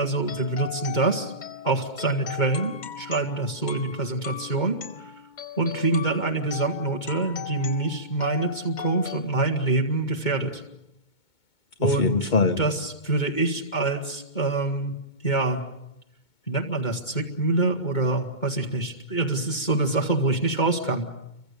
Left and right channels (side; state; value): right; late; 2.2 ms